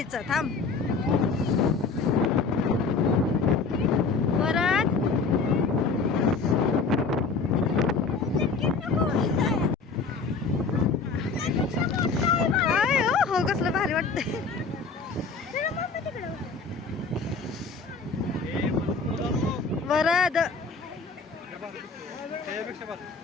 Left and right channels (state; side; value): quieter; right; 4.6 dB